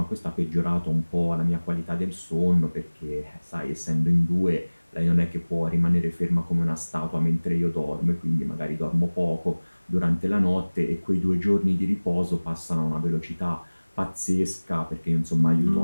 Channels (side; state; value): both; inverted; correlation -1.00